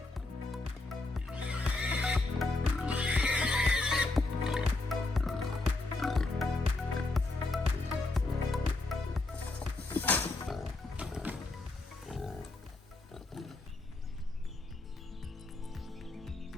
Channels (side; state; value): right; quieter; 3.1 dB